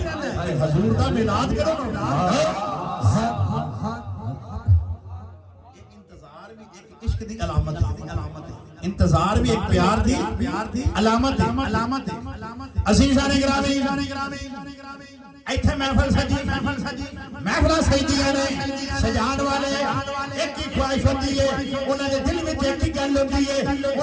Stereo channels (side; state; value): both; identical; correlation 1.00